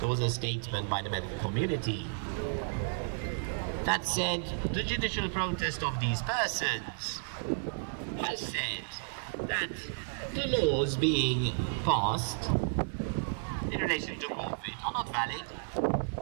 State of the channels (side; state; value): left; silent; digital silence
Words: was a statement by the medical community that said the judicial protest of these persons has said that the laws being passed in relation to COVID are not valid